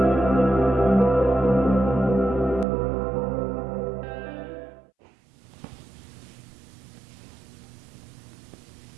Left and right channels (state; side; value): drops out; left; at 2.7 s